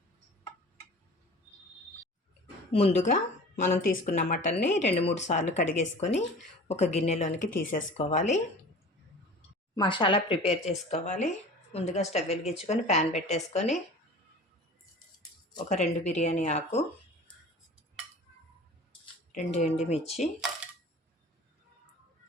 ముందుగా మనం తీసుకున్న మటన్ని 2-3 సార్లు కడిగేసుకొని ఒక గిన్నెలోనికి తీసేసుకోవాలి. మసాలా ప్రిపేర్ చేసుకోవాలి. ముందుగా స్టవ్ వెలిగించుకొని ప్యాన్ పెట్టేసుకొని ఒక 2 బిర్యానీ ఆకు, 2 ఎండుమిర్చి,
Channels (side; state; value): both; normal; correlation 0.41